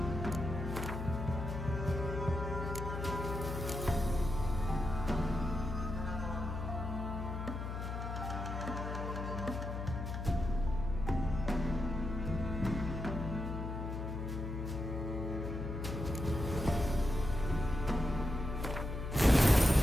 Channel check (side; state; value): left; noise; hum, 4 dB below the sound